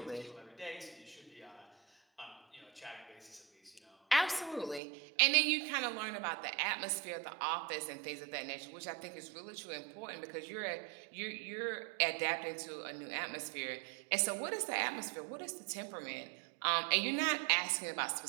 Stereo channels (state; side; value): drops out; left; at 4.8 s